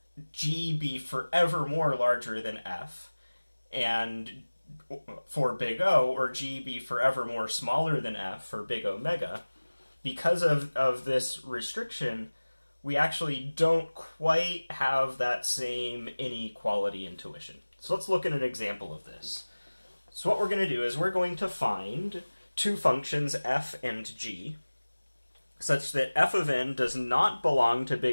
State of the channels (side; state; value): both; inverted; correlation -1.00